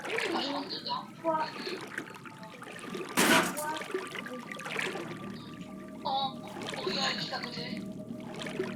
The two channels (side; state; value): both; identical; correlation 1.00